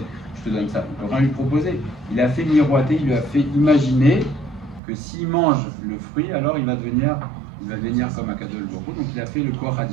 ça. Il ne peut rien lui proposer. Il a fait miroiter, il lui a fait imaginer que s'il mange le fruit, alors il va devenir comme Akadosh Baruch Hu. Donc il a fait le Koach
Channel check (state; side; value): drops out; left; at 4.8 s